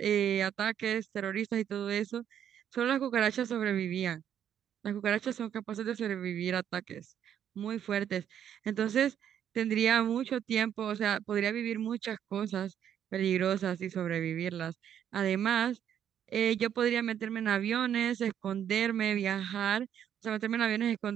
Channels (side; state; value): left; quieter; 9.5 dB